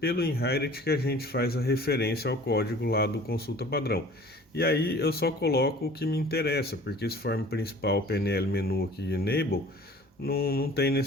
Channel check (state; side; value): normal; both; correlation 0.47